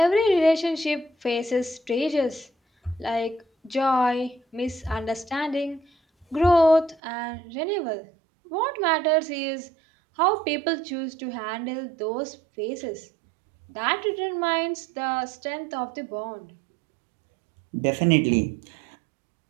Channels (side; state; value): left; drops out; at 7.0 s